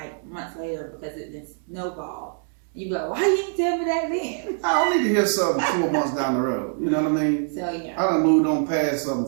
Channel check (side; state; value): left; silent; 62 dB below the other